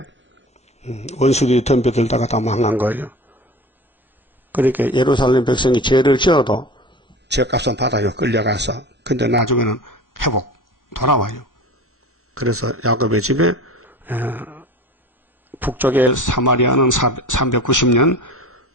원수들이 덤벼들다가 다 망한 거예요. 그러니까 예루살렘 백성이 죄를 지어도 죄값은 받아요. 끌려가서. 근데 나중에는 회복 돌아와요. 그래서 야곱의 집에 북쪽의 사마리아는 390년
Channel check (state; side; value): normal; both; correlation 0.36